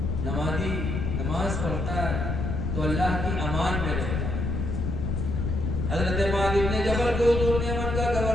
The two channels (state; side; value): noise; left; rumble, 1 dB below the sound